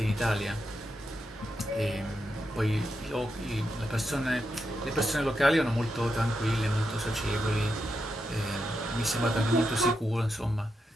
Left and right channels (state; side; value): normal; both; correlation 0.85